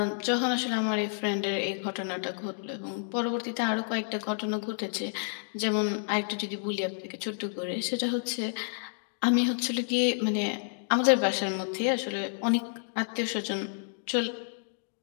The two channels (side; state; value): right; silent; digital silence